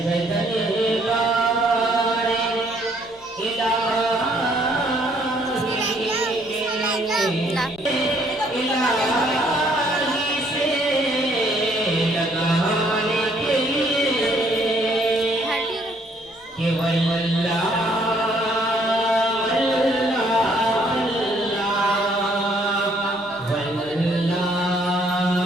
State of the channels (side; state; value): left; noise; hum, 30 dB below the sound